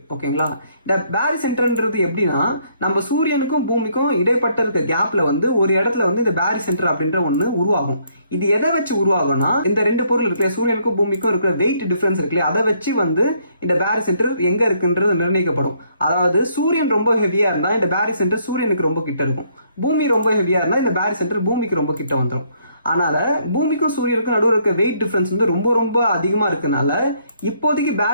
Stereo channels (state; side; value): inverted; both; correlation -0.68